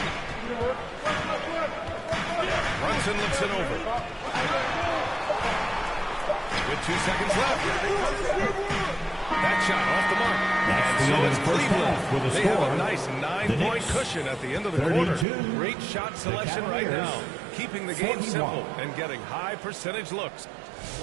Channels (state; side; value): drops out; left; at 15.2 s